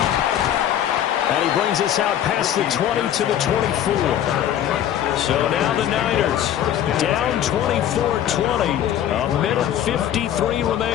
And he brings us out past the 20 to the 24. So now the Niners down 24-20, a minute 53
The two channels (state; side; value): quieter; right; 10.7 dB